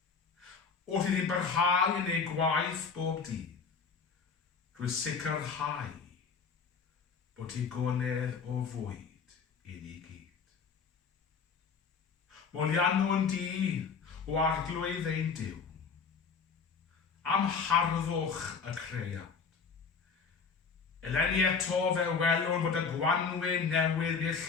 wrth iddi barhau yn ei gwaith bob dydd, drwy sicrhau bod hi gonedd o fwyd i ni gyd. Molianwn di o arglwydd ein Duw, am harddwch y creiad. Eleni eto fe welwn bod y gwanwyn newydd i'r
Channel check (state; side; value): quieter; right; 5.5 dB